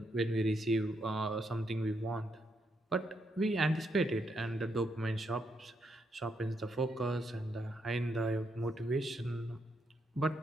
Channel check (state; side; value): normal; both; correlation 0.78